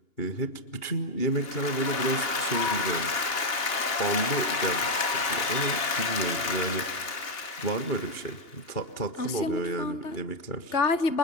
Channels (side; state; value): right; late; 2.8 ms